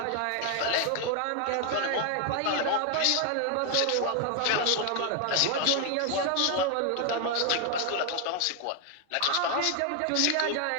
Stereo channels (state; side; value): different; both; correlation 0.01